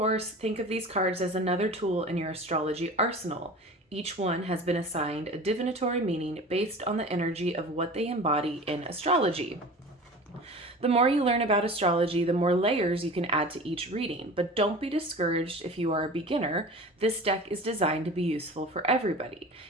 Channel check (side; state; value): both; normal; correlation 0.37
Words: think of these cards as another tool in your astrology arsenal. Each one has been assigned a divinatory meaning based on the energy of what they embody in astrology. The more you learn about astrology, the more layers you can add to each reading. But don't be discouraged if you are a beginner. This deck is designed to be useful for everybody.